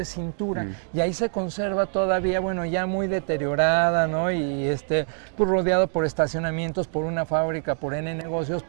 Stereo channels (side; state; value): left; silent; 62 dB below the other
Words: Cintura, y ahí se conserva todavía, bueno, ya muy deteriorada, ¿no? Y pues rodeado por estacionamientos, por una fábrica, por N negocios,